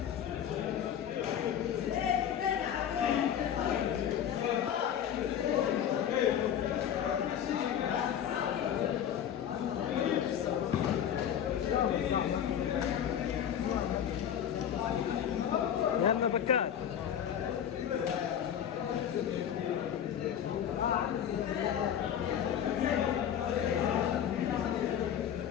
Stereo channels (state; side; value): quieter; right; 9.4 dB